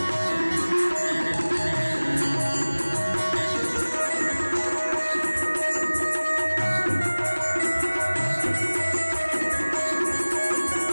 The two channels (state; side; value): inverted; both; correlation -1.00